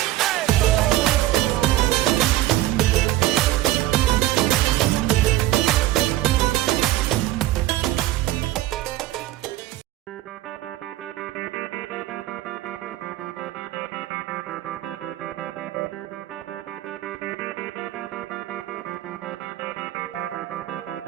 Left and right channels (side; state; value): left; quieter; 15.3 dB